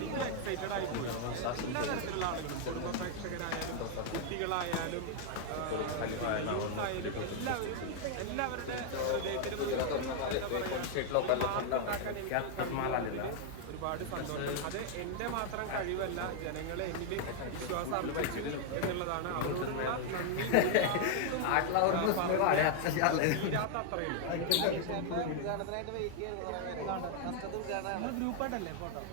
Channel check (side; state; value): both; different; correlation 0.00